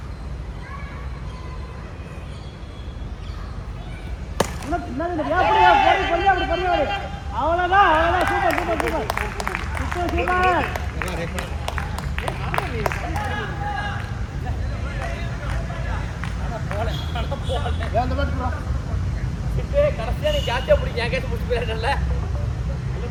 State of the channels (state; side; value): identical; both; correlation 1.00